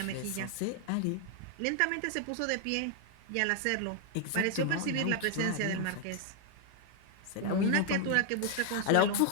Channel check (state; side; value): different; both; correlation 0.00